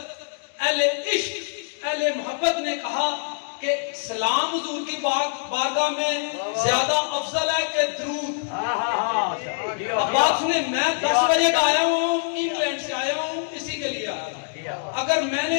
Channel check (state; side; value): silent; right; digital silence